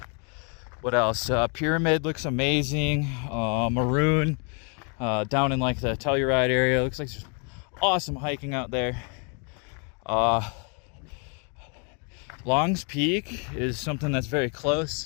What else? Pyramid looks amazing. Maroon down in like the Telluride area. Looks like there's awesome hiking out there. Long's Peak is something that's very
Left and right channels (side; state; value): right; quieter; 37.6 dB